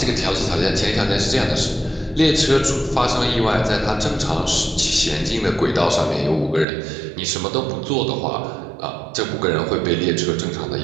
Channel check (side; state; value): left; drops out; at 6.7 s